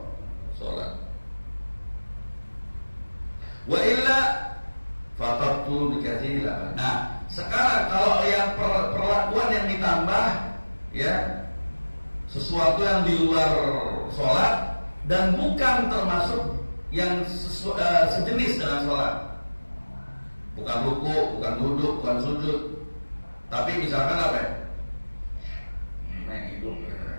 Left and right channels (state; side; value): inverted; both; correlation -1.00